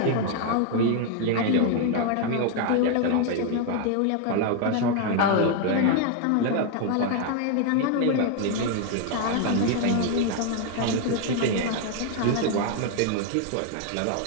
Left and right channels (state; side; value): different; both; correlation 0.01